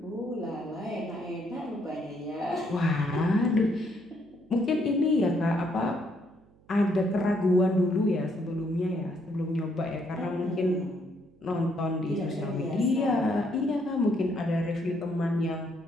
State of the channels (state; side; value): noise; right; hum, 29 dB below the sound